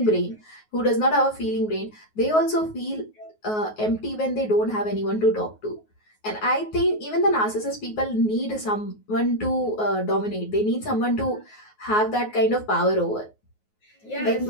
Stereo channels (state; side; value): late; right; 9.4 ms